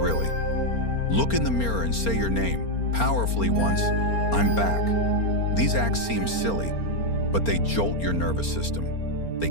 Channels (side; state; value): right; late; 4.4 ms